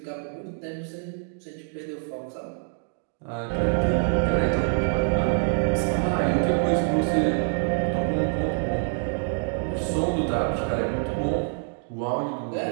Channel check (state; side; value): silent; left; 59 dB below the other